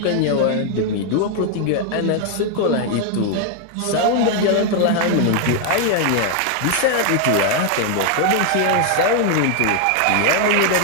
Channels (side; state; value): both; different; correlation 0.00